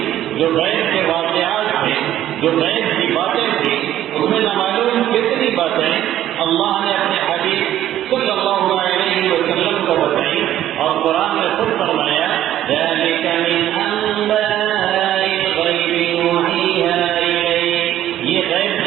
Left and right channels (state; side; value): quieter; left; 12.4 dB